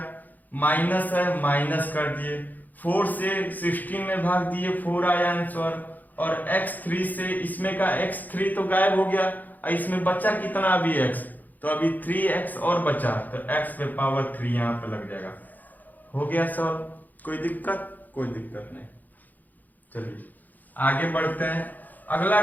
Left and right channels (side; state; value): right; late; 0.083 ms